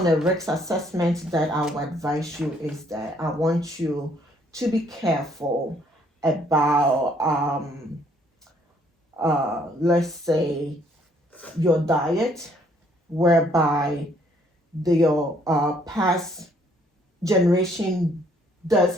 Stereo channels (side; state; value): both; normal; correlation 0.65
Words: the risk assessment that I would advise you is that I want you to be careful about, let's say, your diet, whereby the past generation does